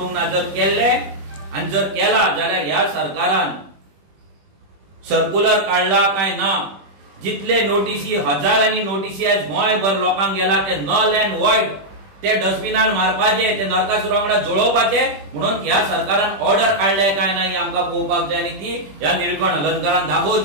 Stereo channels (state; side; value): late; left; 21 ms